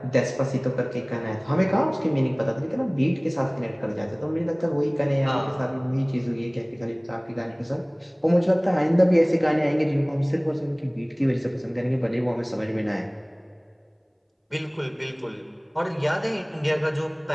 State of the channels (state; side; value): identical; both; correlation 1.00